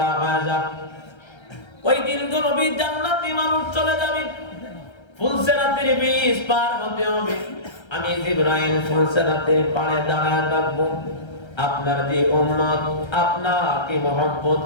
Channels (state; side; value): late; right; 1.3 ms